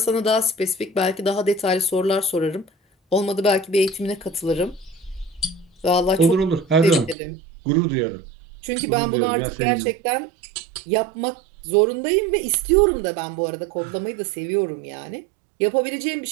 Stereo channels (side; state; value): left; drops out; at 7.2 s